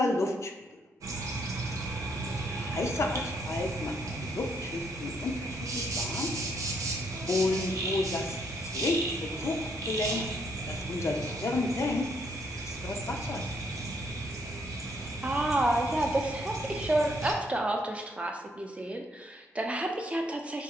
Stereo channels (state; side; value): normal; both; correlation 0.71